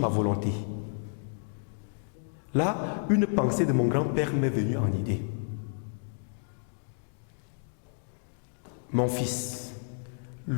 volonté. Là, une pensée de mon grand-père m'est venue en idée. Mon fils,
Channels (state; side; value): silent; right; digital silence